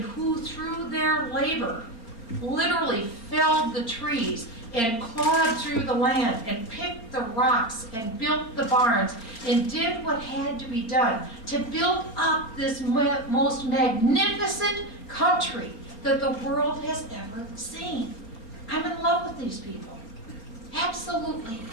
through their labor literally felled the trees and clawed through the land and picked the rocks and built the barns and did what had to be done to build up this most magnificent country that the world has ever seen. I'm in love with these people. Absolutely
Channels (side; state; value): right; late; 4.4 ms